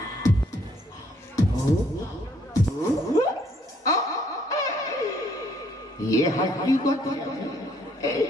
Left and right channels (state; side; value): normal; both; correlation 0.66